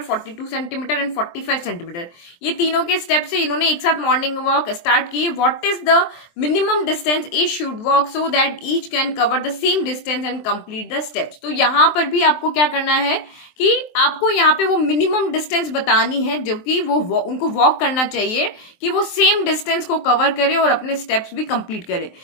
42 centimetre and 45 centimetre. ये तीनों के स्टेप से इन्होंने एक साथ मॉर्निंग वॉक स्टार्ट की। What is the minimum distance each should walk so that each can cover the same distance and complete the steps. तो यहाँ पर भी आपको क्या करना है कि आपको यहाँ पे वो मिनिमम डिस्टेंस बतानी है जो कि वो उनको वॉक करना चाहिए कि वो सेम डिस्टेंस को कवर करे और अपने स्टेप्स भी कंप्लीट करे।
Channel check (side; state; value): right; late; 23 ms